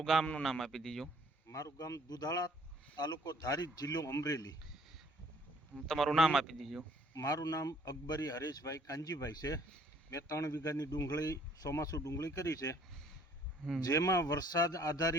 ગામનું નામ આપી દીજો. મારું ગામ દુધાળા, તાલુકો ધારી, જિલ્લો અમરેલી. તમારું નામ આપી દીજો. મારું નામ અકબરી હરેશભાઈ કાંજીભાઈ છે. મેં 3 વીઘાની ડુંગળી, ચોમાસું ડુંગળી કરી છે, જેમાં વરસાદ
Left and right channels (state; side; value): normal; both; correlation 0.59